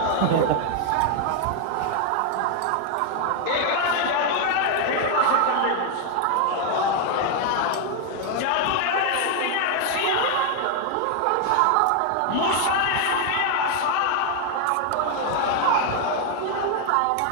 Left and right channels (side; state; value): both; different; correlation 0.00